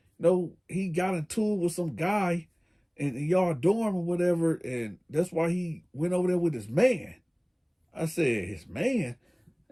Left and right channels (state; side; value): identical; both; correlation 1.00